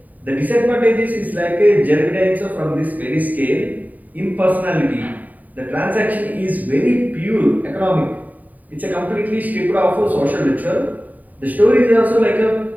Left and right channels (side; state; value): left; late; 0.078 ms